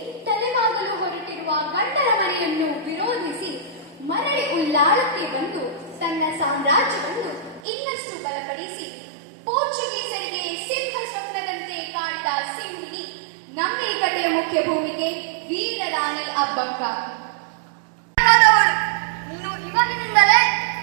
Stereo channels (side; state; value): left; drops out; at 7.6 s